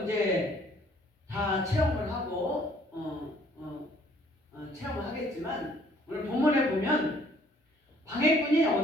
이제 다 체험을 하고 체험을 하겠지만 오늘 본문에 보면 방해꾼이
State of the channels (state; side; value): normal; both; correlation 0.60